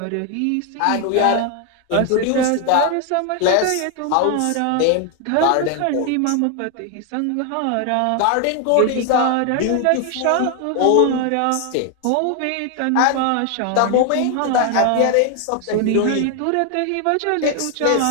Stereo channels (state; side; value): different; both; correlation 0.00